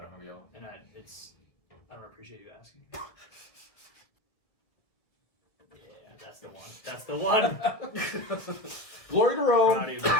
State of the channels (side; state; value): right; late; 1.7 ms